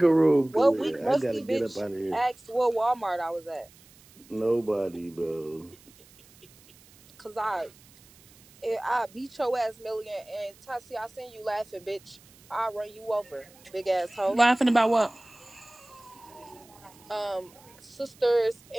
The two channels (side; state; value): right; noise; hiss, 26 dB below the sound